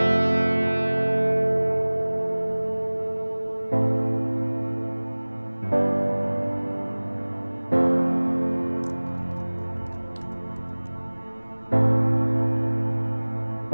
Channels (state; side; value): inverted; both; correlation -1.00